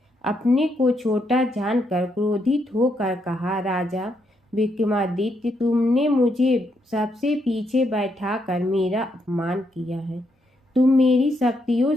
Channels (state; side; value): normal; both; correlation 0.78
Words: अपने को छोटा जानकर क्रोधित होकर कहा, राजा विक्रमादित्य, तुमने मुझे सबसे पीछे बैठाकर मेरा अपमान किया है। तुम मेरी शक्तियों